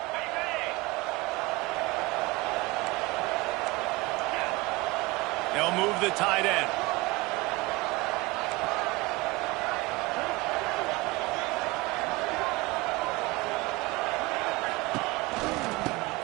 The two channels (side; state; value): left; quieter; 22.7 dB